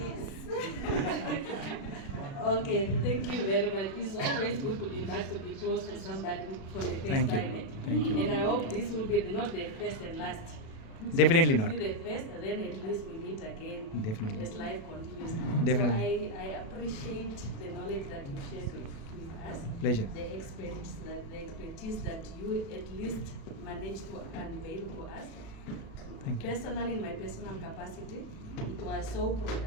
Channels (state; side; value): late; right; 36 ms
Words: Okay, thank you very much. It's always good to be back, to be close to somebody for the first time. Thank you. And I hope this will be not the first and last. Definitely This not. will be the first, and then at least we meet again. Definitely. As life continues. Definitely. So I appreciate the knowledge that you shared with us. Pleasure. The expertise that you at least managed to unveil to us. Thank you. Personally, in my personal capacity, it was so